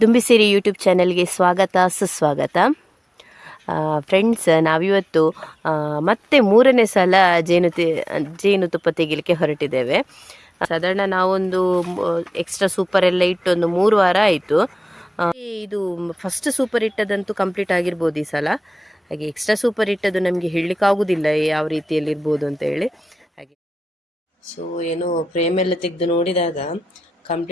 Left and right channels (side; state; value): both; normal; correlation 0.96